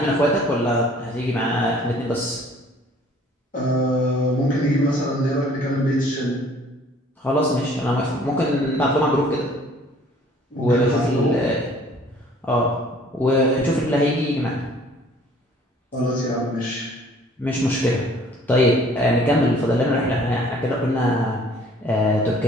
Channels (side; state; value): both; normal; correlation 0.55